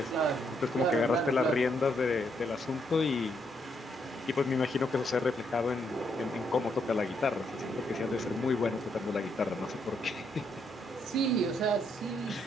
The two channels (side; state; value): both; normal; correlation 0.75